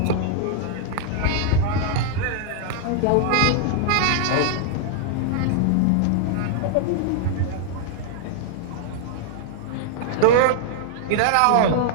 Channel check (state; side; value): different; both; correlation -0.01